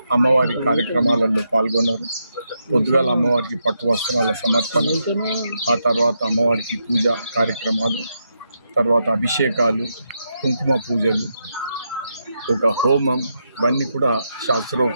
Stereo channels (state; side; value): inverted; both; correlation -0.83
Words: అమ్మవారి కార్యక్రమాలలో పాల్గొన్నారు. పొద్దుగాల అమ్మవారికి పట్టు వస్త్రాల సమర్పణ, ఆ తర్వాత అమ్మవారికి పూజ కార్యక్రమాలు, తర్వాత అభిషేకాలు, కుంకుమ పూజలు, ఒక హోమం, ఇవన్నీ కూడా